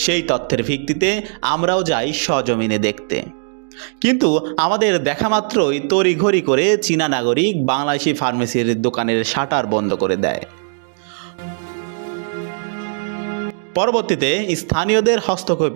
সেই তথ্যের ভিত্তিতে আমরাও যাই সজমিনে দেখতে, কিন্তু আমাদের দেখা মাত্রই তড়িঘড়ি করে চীনা নাগরিক বাংলাদেশি ফার্মেসির দোকানের শাটার বন্ধ করে দেয়। পরবর্তীতে স্থানীয়দের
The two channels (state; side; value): silent; left; digital silence